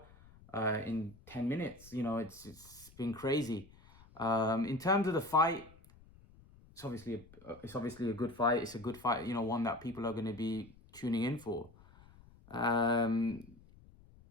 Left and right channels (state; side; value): noise; left; rumble, 24 dB below the sound